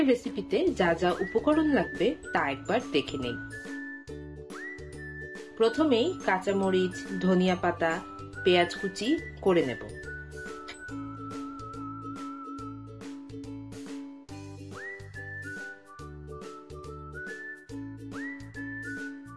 রেসিপিতে যা যা উপকরণ লাগবে তা একবার দেখে নেই। প্রথমেই কাঁচামরিচ, ধনিয়া পাতা, পেঁয়াজ কুচি করে নেব।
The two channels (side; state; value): both; identical; correlation 1.00